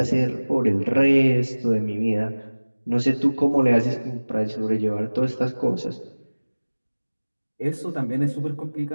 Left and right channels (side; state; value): both; inverted; correlation -1.00